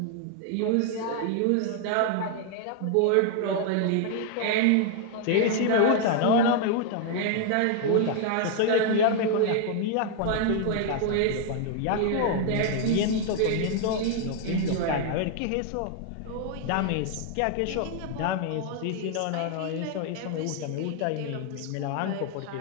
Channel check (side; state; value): both; different; correlation 0.00